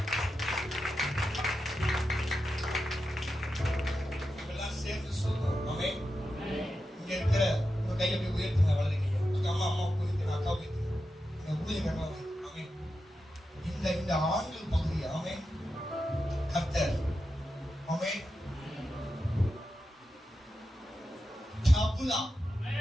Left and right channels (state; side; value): normal; both; correlation 0.89